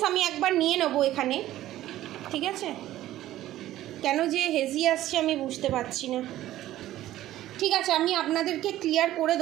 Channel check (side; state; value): left; quieter; 14.2 dB